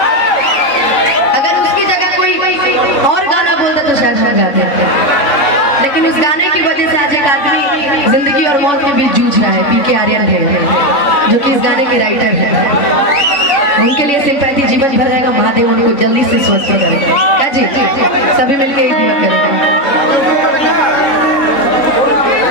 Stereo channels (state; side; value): late; right; 3.5 ms